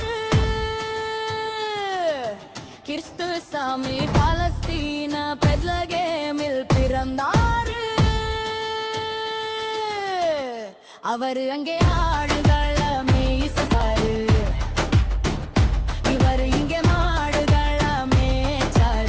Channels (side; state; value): both; identical; correlation 1.00